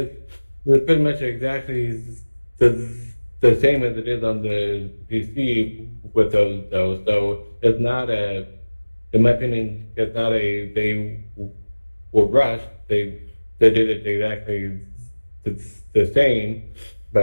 pretty much exactly the same as it is on the PC with those though. So it's not in my opinion, it's not they were rushed. They did it exactly the same,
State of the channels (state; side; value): inverted; both; correlation -1.00